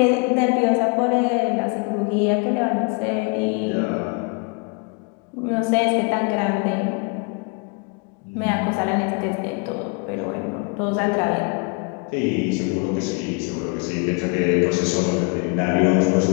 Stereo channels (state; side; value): quieter; right; 33.4 dB